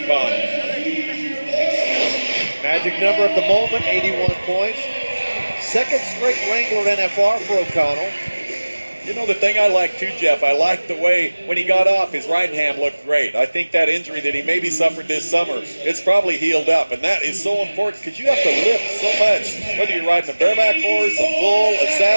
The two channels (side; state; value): both; inverted; correlation -1.00